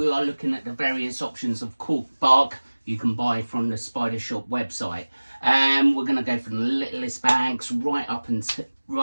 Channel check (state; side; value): inverted; both; correlation -1.00